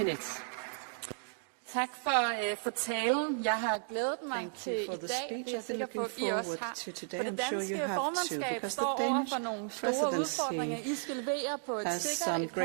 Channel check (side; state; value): left; silent; digital silence